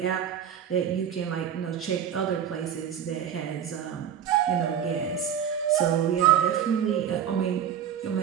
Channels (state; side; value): quieter; left; 9.0 dB